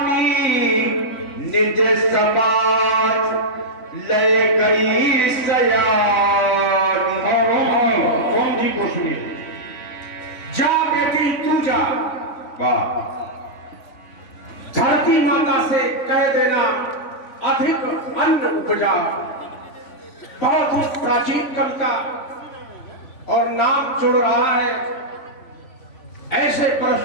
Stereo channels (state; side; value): late; right; 3.5 ms